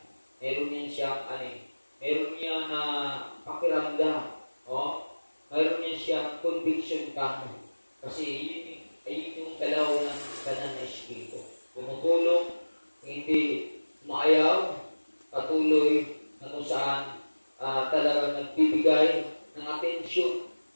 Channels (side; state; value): both; inverted; correlation -1.00